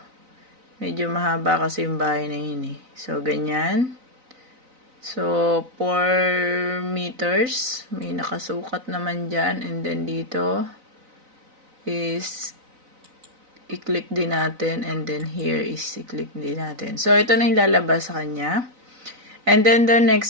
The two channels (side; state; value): left; late; 3.9 ms